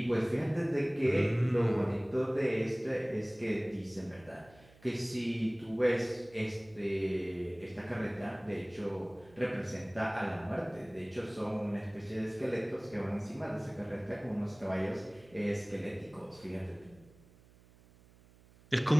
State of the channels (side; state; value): right; noise; hum, 26 dB below the sound